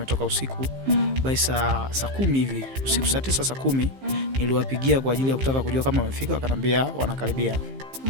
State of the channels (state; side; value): late; left; 15 ms